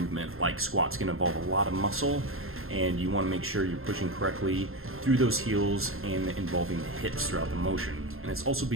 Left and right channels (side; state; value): left; late; 0.61 ms